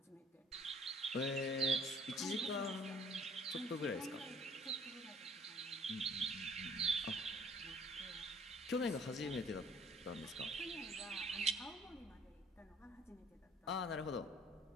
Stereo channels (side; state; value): both; normal; correlation 0.56